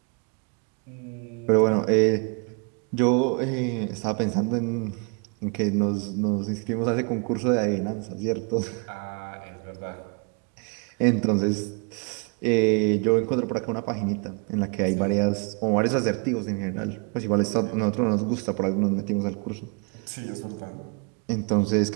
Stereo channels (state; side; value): quieter; left; 35.2 dB